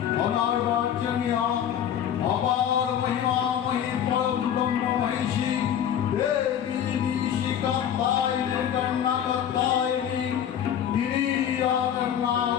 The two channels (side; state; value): right; quieter; 9.5 dB